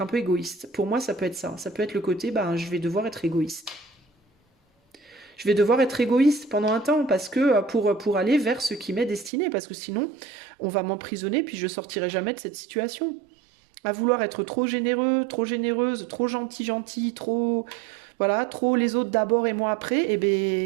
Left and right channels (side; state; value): left; drops out; at 9.3 s